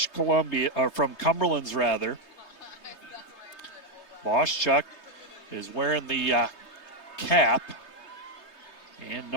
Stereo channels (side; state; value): right; late; 3.2 ms